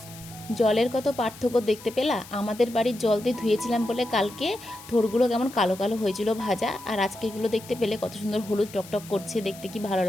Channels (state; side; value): noise; left; hiss, 18 dB below the sound